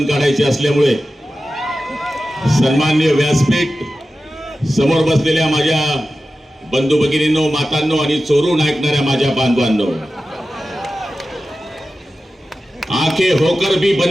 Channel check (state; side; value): normal; both; correlation 0.94